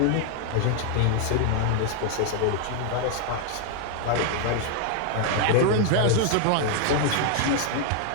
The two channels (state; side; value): different; both; correlation 0.00